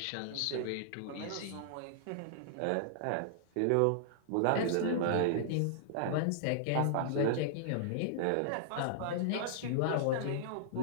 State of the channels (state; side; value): different; both; correlation -0.01